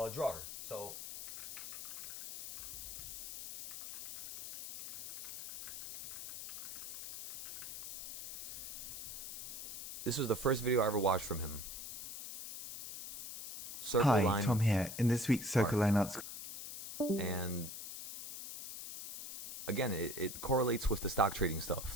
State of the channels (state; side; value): noise; left; hiss, 9 dB below the sound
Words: drawer. So this was the first video I ever watched from him. Circle Hi, line Tom here. In this week's Circle Line Arts. and again, it correlates with the stock trading stuff.